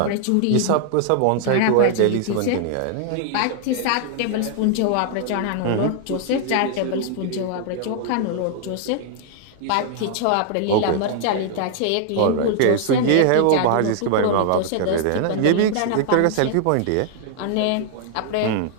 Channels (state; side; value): different; both; correlation 0.00